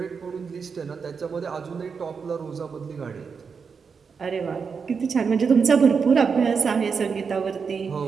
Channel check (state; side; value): quieter; left; 5.7 dB